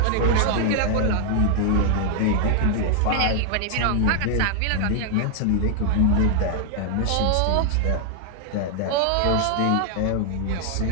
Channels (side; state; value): both; different; correlation 0.00